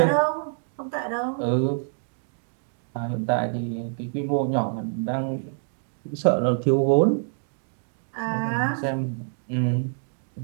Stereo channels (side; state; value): left; silent; digital silence